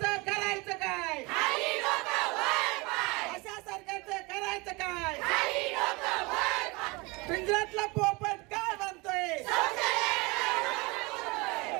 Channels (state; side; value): quieter; left; 25.8 dB